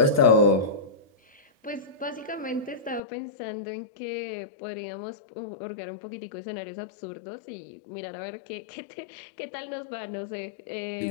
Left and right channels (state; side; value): drops out; right; at 3.0 s